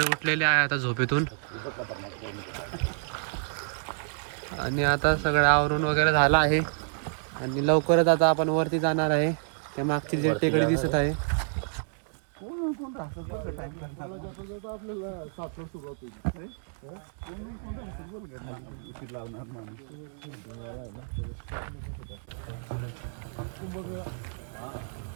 उठलेले आहे आता झोपेतून आणि आता सगळं आवरून वगैरे झालं आहे आणि लवकरच आता आपण वरती जाणार आहे. त्या मागची जी टेकडी दिसत आहे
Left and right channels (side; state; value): left; silent; digital silence